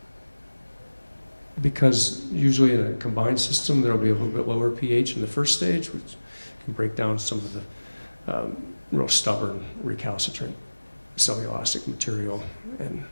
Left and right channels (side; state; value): both; inverted; correlation -1.00